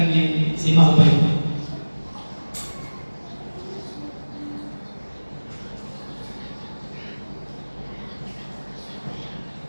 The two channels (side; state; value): both; inverted; correlation -1.00